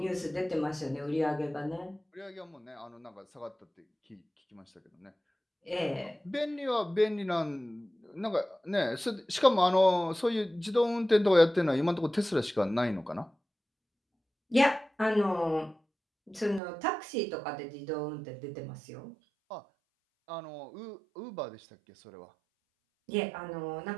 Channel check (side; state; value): left; drops out; at 16.6 s